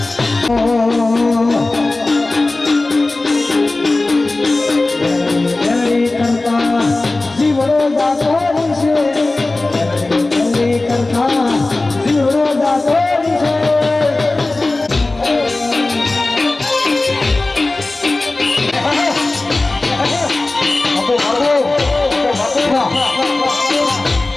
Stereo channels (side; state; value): right; quieter; 3.1 dB